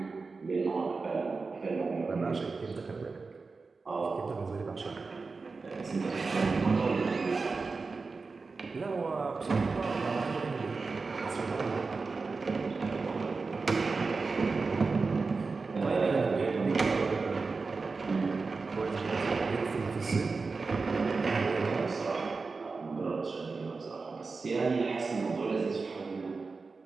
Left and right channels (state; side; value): quieter; left; 4.3 dB